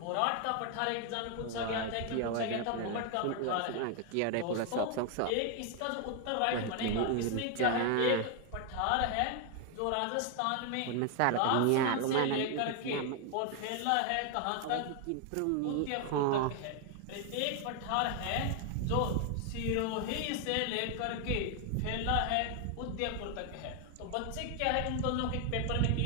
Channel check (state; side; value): different; both; correlation 0.01